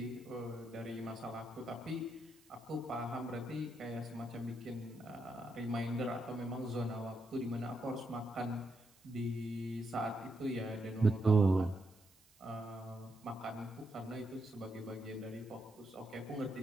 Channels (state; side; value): noise; right; hiss, 28 dB below the sound